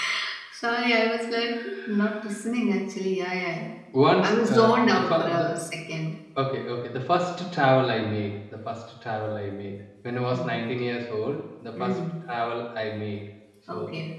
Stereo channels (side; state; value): both; identical; correlation 1.00